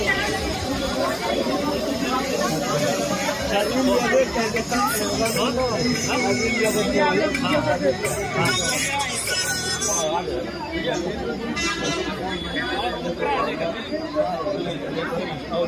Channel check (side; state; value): both; identical; correlation 1.00